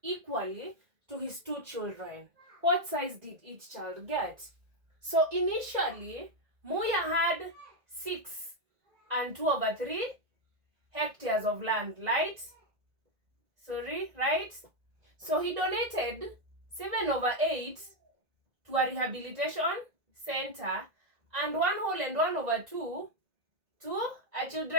to his 2 children. What size did each child get? So initially, Moya had 6 and 2/3 hectares of land, right? So he donated 7/8 to a rehabilitation center and 1 whole and 1/2 to a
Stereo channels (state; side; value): late; left; 1.9 ms